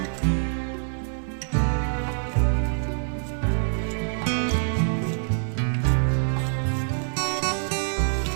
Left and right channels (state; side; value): silent; left; digital silence